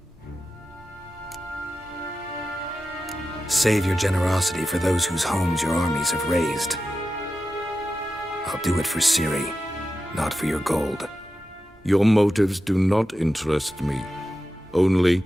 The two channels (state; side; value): normal; both; correlation 0.92